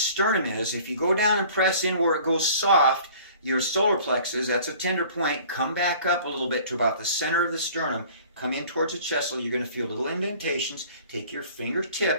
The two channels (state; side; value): inverted; both; correlation -0.49